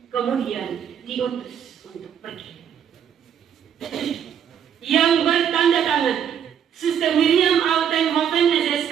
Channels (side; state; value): left; quieter; 8.7 dB